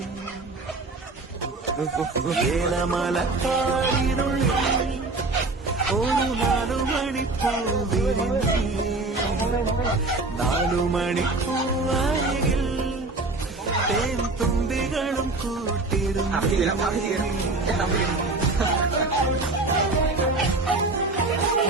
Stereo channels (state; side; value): quieter; left; 3.3 dB